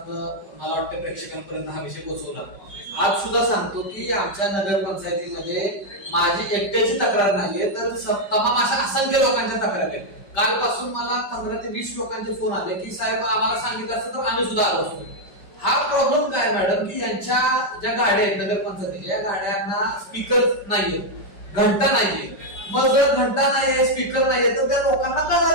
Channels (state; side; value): late; right; 5.1 ms